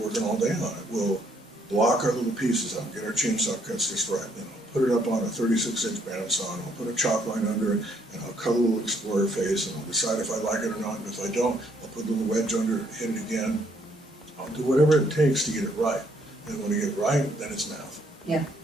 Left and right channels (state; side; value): normal; both; correlation 0.69